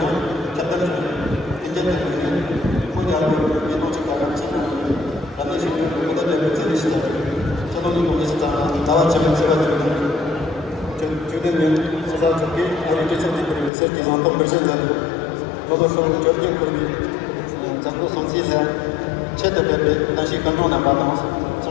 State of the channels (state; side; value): drops out; right; at 13.7 s